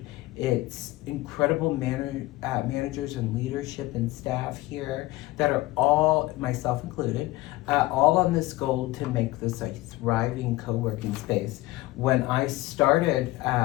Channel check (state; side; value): quieter; right; 18.8 dB